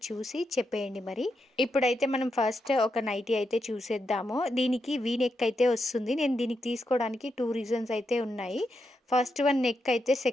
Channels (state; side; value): normal; both; correlation 0.84